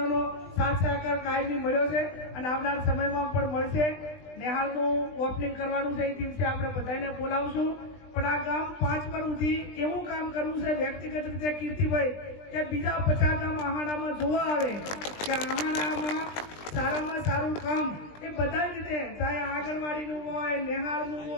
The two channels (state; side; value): late; right; 20 ms